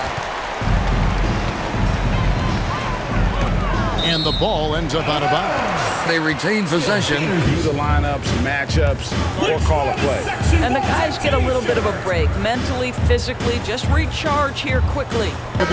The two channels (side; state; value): both; identical; correlation 1.00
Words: And the ball ends up out of bounds. They retain possession. View the lineups, matchups, or call a play. And the guys get a little bit of a break, mentally, physically, just recharge here quickly. The